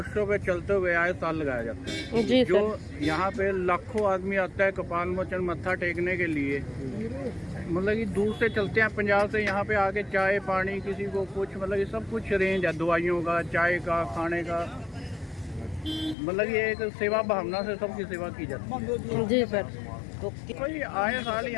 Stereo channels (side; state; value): right; drops out; at 16.2 s